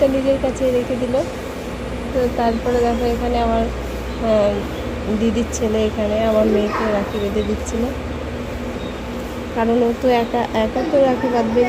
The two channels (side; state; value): both; identical; correlation 1.00